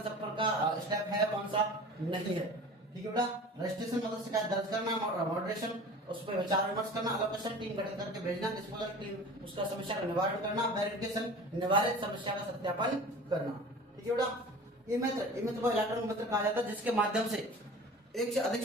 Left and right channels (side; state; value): both; normal; correlation 0.40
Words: का स्टेप है, कौन सा नहीं है। ठीक है बेटा? रजिस्ट्रेशन मतलब शिकायत दर्ज करना, मॉडरेशन उस पर विचार विमर्श करना, एलोकेशन टीम गठित करके भेजना, डिस्पोजल टीम उसका समस्या का निवारण करना, वेरिफिकेशन निवारित समस्या का सत्यापन करना। ठीक है बेटा? ई मित्र को इलेक्ट्रॉनिक मित्र कहा जाता है, जिसके माध्यम से एक से अधिक